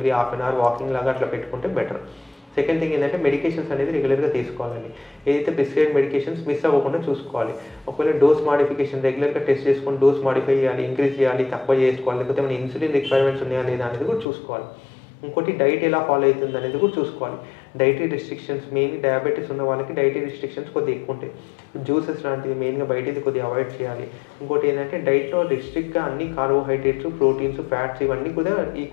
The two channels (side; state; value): right; drops out; at 14.2 s